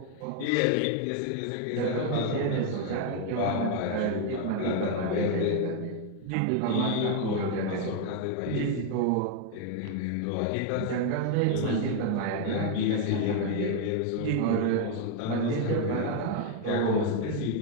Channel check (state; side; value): different; both; correlation 0.01